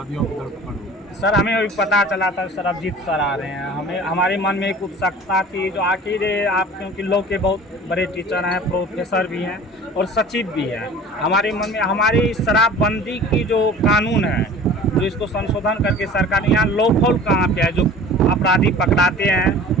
की धरपकड़ होगी। सर हमें अभी पता चला था सरबजीत सर आ रहे हैं, हमें हमारे मन में एक उत्सुकता थी जो आखिर आप क्योंकि लॉ के बहुत बड़े टीचर हैं, प्रोफेसर भी हैं और सचिव भी हैं, हमारे मन में हमारी शराबबंदी की जो कानून है जो इसको संशोधन करके सरकार यहाँ लॉफुल कहाँ पे है, जो अपराधी पकड़ाते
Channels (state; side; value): normal; both; correlation 0.43